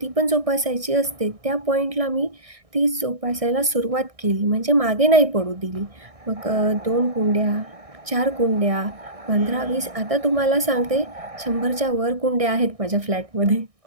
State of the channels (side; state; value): left; late; 1.6 ms